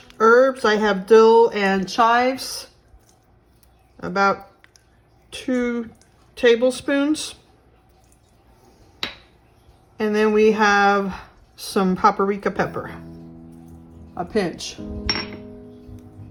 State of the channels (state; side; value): identical; both; correlation 1.00